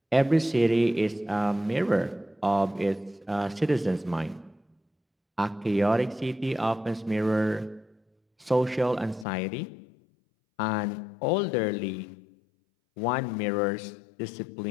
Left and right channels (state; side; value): drops out; right; at 9.2 s